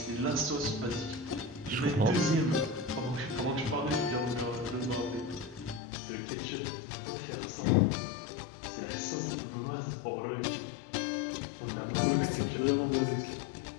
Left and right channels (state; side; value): drops out; right; at 5.8 s